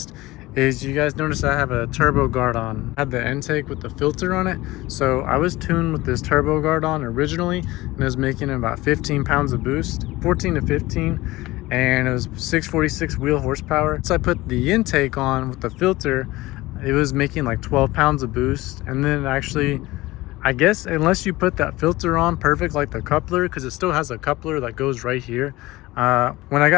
is, you guys notice I have a turbo guard on. I had the intake with the filter on it. So I was tuned with this turbo guard on originally, and it was making about 15 pounds of boost, 14 to 15. And it was 646 wheel horsepower. So I put the intake on with the filter, it was making like 12 pounds of boost. And then actually, I guess unless you put that filter on perfect, like the coupler, because it still has a coupler that goes right here. When I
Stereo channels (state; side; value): quieter; right; 19.2 dB